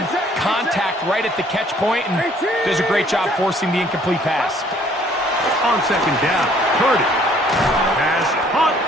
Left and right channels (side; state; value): both; normal; correlation 0.60